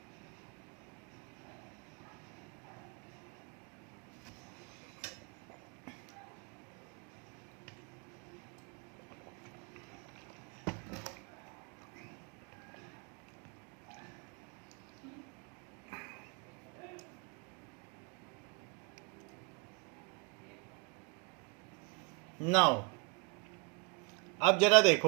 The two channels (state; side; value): quieter; left; 32.3 dB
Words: Now अब जरा